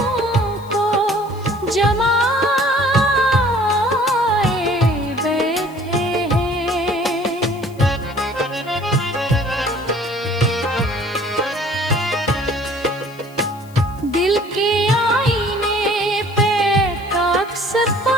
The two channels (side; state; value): left; noise; hiss, 25 dB below the sound